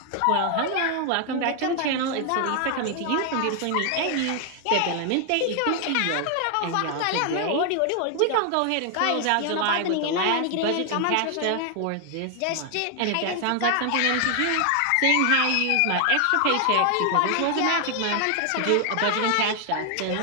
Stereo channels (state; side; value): different; both; correlation 0.00